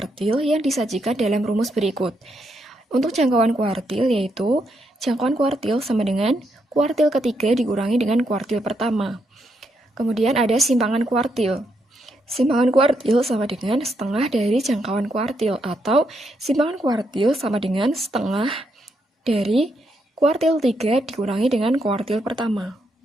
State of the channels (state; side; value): normal; both; correlation 0.79